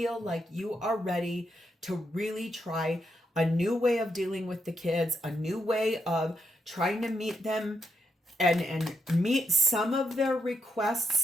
like you are ready to really try a new way of dealing with the kids, a new way of trying to meet them and meet some of their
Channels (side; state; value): both; normal; correlation 0.81